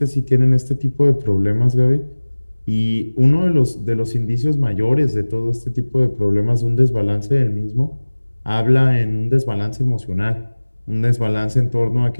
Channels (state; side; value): inverted; both; correlation -1.00